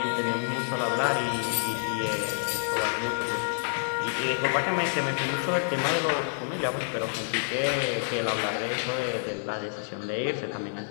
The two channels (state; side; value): silent; right; digital silence